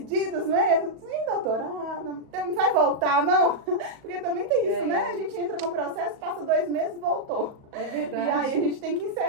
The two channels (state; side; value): late; left; 37 ms